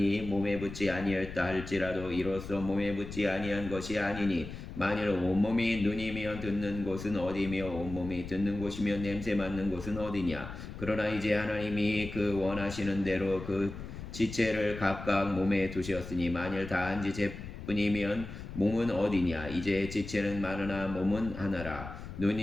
몸에 붙지 아니하였다 할지라도 이로써 몸에 붙지 아니한 것이 아니니 만일 온몸이 눈이면 듣는 곳은 어디며 온몸이 듣는 곳이면 냄새 맡는 곳은 어디냐. 그러나 이제 하나님이 그 원하시는 대로 그 지체를 각각 몸에 두셨으니 만일 다 한 지체뿐이면 몸은 어디냐. 이제 지체는 많으나 몸은 하나라.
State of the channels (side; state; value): left; noise; rumble, 10 dB below the sound